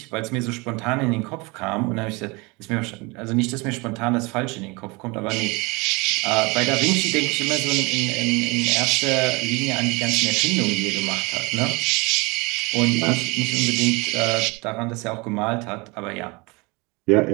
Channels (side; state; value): left; quieter; 26.7 dB